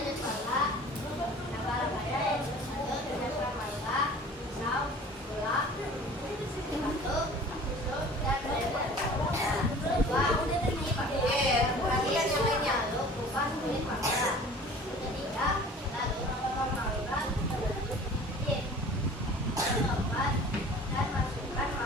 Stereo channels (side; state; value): both; normal; correlation 0.45